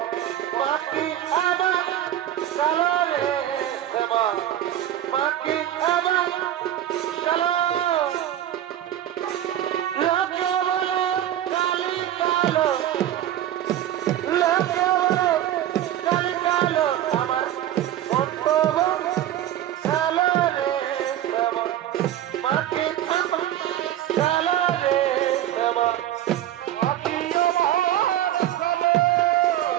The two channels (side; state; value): left; quieter; 12.1 dB